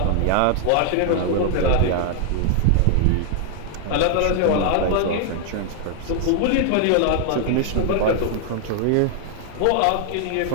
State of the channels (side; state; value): both; different; correlation 0.00